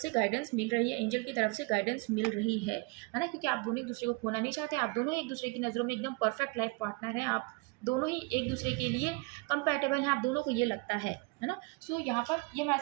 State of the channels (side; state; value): left; quieter; 27.1 dB